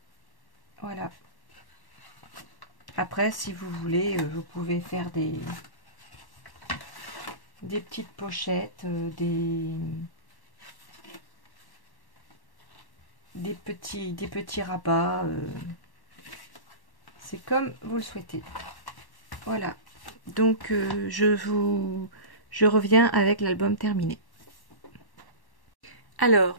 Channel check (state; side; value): late; right; 1.1 ms